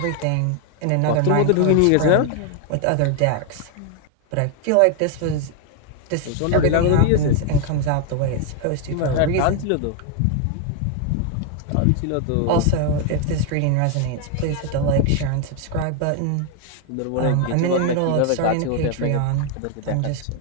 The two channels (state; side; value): different; both; correlation 0.00